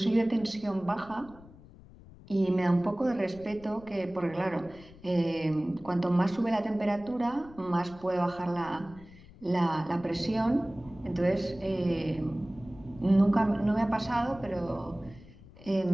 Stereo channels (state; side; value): noise; left; rumble, 21 dB below the sound